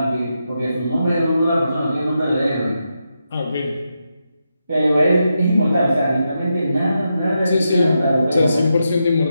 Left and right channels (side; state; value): both; inverted; correlation -0.86